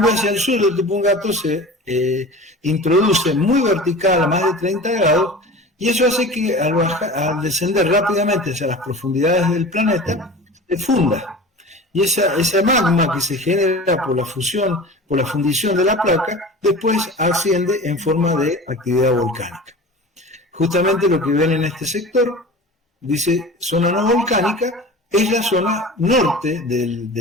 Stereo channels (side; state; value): both; normal; correlation 0.36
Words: hacia el sur de Tupungato se introduce muy vertical, a más de 30 grados, y eso hace que al descender rápidamente hacia las profundidades del planeta, se funda. Y esa magma que se genera por la fusión, por la fundición de la placa, después asciende en forma de actividad volcánica. Justamente lo que ven en este sector, dice zona no volcánica, es la zona norte